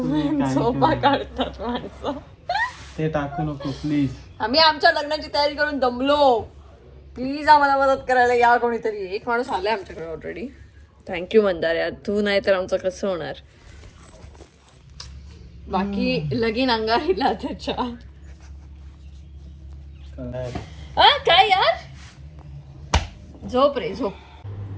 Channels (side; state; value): both; identical; correlation 1.00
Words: काढतात माणसं. ते टाकू नको प्लीज. आम्ही आमच्या लग्नाची तयारी करून दमलो. प्लीज आम्हाला मदत करायला या कोणीतरी. एक माणूस आलाय आमच्याकडे ऑलरेडी. थँक्यू मंदार. तू नाही तर आमचं कसं होणार. बाकी लगीन अंगारीला त्याच्या. काय यार. झोप रे झोप.